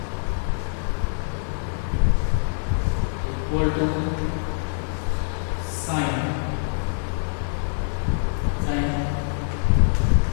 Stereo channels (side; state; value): right; silent; digital silence